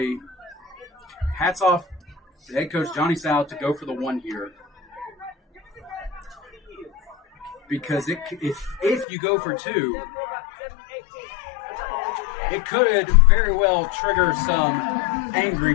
hats off to head coach Johnny Sal to go for the 1 here. Because if you go for 2, it could very well trigger some angry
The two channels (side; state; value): right; drops out; at 9.1 s